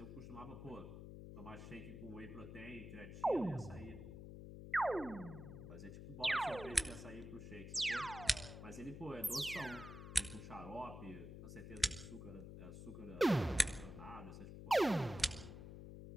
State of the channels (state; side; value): noise; left; hum, 10 dB below the sound